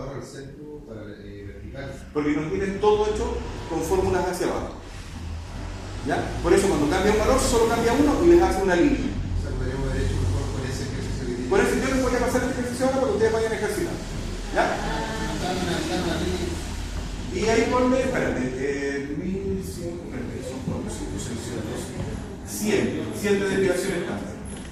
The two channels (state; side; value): identical; both; correlation 1.00